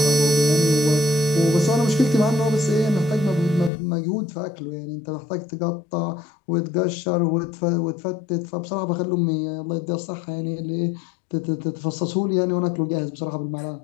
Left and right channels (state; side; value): drops out; right; at 3.7 s